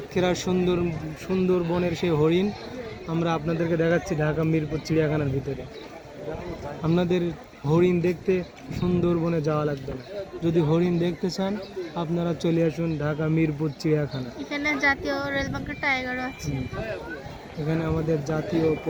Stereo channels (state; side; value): identical; both; correlation 1.00